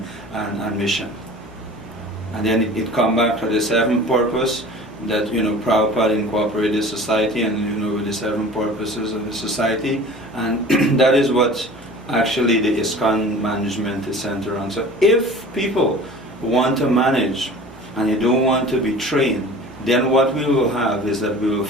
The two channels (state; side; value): normal; both; correlation 0.42